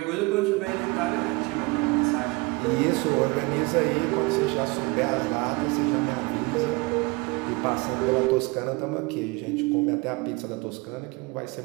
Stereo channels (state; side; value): quieter; left; 26.1 dB